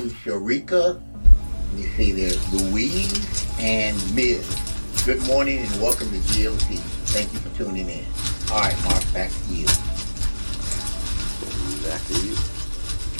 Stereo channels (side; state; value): both; inverted; correlation -1.00